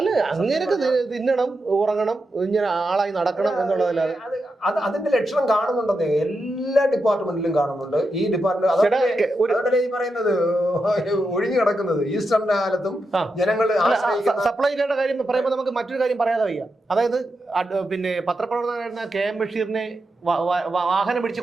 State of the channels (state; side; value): normal; both; correlation 0.87